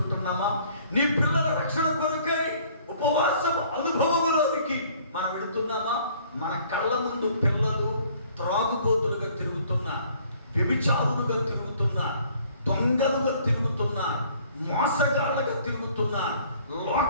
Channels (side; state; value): both; inverted; correlation -0.58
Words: నీ పిల్లల రక్షణ కొరకై ఉపవాసం అనుభవంలోనికి మనం వెళుతున్నామా? మన కళ్ళ ముందు పిల్లలు త్రాగుబోతులుగా తిరుగుతున్నా, వ్యభిచారులుగా తిరుగుతున్నా, దొంగలుగా తిరుగుతున్నా, మోసగాళ్ళగా తిరుగుతున్నా,